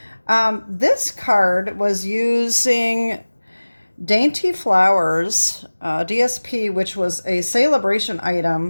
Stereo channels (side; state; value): both; inverted; correlation -1.00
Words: This card was using Dainty Flowers DSP, which was a celebration